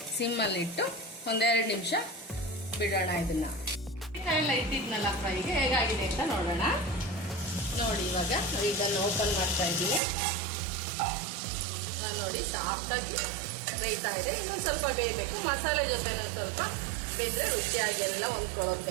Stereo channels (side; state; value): left; drops out; at 10.0 s